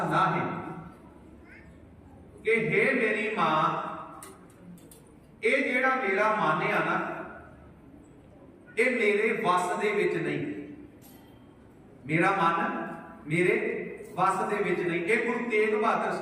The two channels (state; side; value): identical; both; correlation 1.00